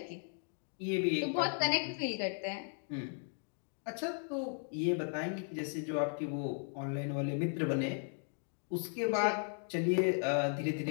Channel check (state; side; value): silent; right; 54 dB below the other